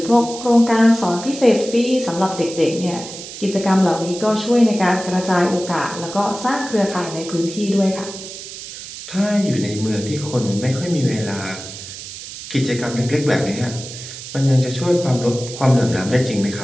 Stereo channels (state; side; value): noise; right; hiss, 12 dB below the sound